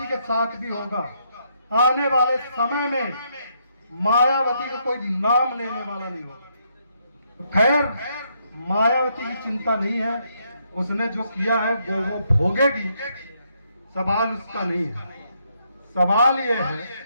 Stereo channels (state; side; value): inverted; both; correlation -0.76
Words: के साथ भी होगा। आने वाले समय में मायावती का कोई नाम लेने वाला नहीं होगा। खैर, मायावती की चिंता नहीं है, उसने जो किया है वो भोगेगी, सवाल उसका नहीं है। सवाल ये है